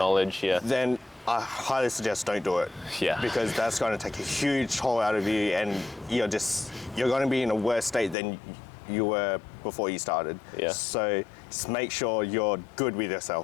then I highly suggest don't do it. Yeah. Because that's going to take a huge toll out of you, and you're going to be in a worse state than you were before you started. Yeah. So just make sure you're good with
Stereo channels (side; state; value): right; drops out; at 8.2 s